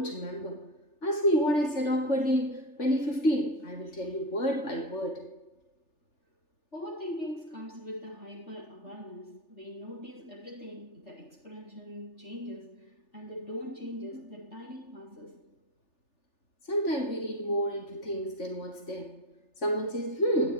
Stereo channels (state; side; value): late; right; 3.4 ms